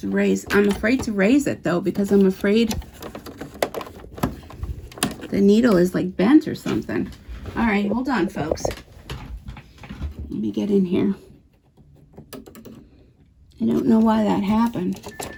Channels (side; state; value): both; identical; correlation 1.00